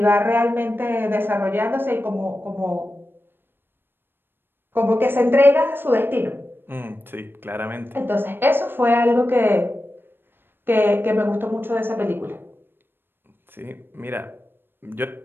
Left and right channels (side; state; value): left; late; 0.099 ms